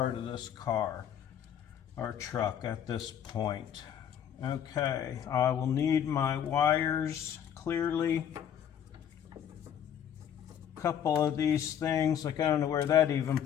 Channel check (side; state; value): right; quieter; 9.3 dB